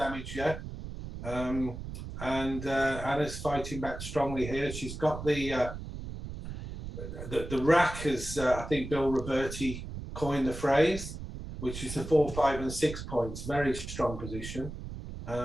yet. And Anna's fighting back strongly here. She's got the rack, as I think Bill Roberti coined the phrase, which is the 4, 5, and 6 points. Very strong position.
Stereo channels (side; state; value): right; noise; rumble, 9 dB below the sound